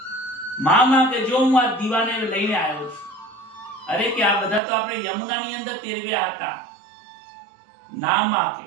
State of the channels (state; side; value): drops out; left; at 4.6 s